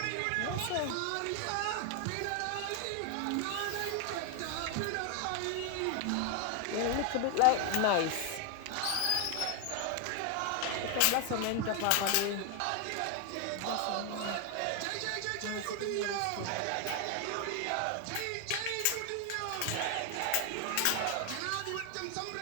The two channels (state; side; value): different; both; correlation 0.00